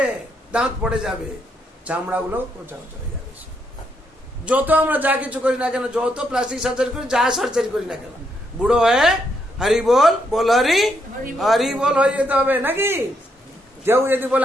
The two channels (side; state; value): both; normal; correlation 0.77